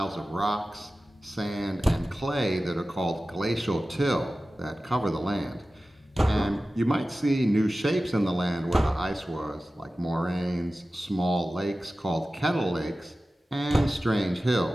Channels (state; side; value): normal; both; correlation 0.95